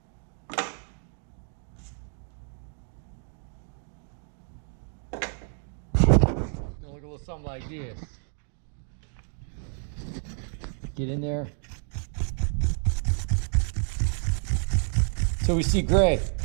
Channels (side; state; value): left; silent; 58 dB below the other